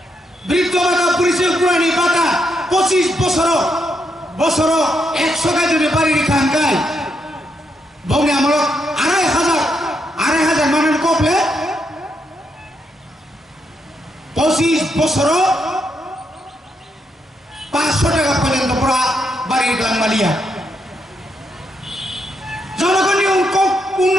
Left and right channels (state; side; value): normal; both; correlation 0.80